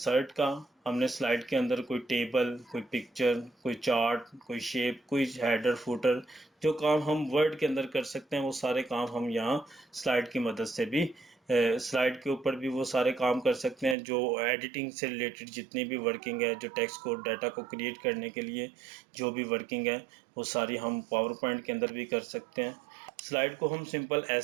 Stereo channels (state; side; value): drops out; left; at 14.0 s